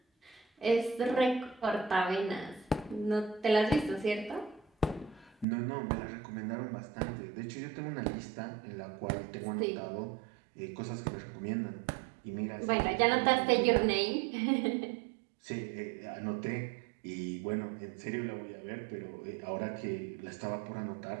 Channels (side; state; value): left; drops out; at 5.5 s